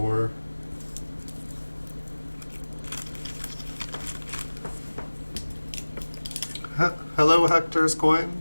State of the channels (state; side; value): inverted; both; correlation -1.00